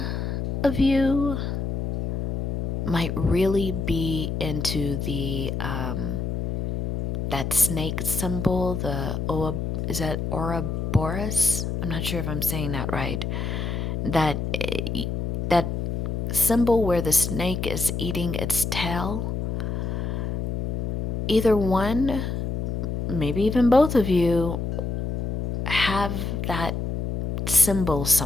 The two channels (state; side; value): noise; left; hum, 2 dB below the sound